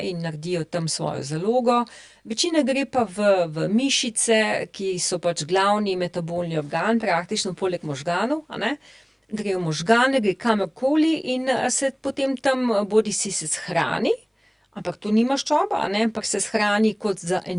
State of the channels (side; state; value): both; identical; correlation 1.00